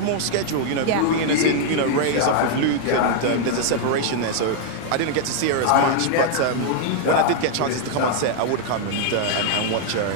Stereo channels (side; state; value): both; different; correlation -0.01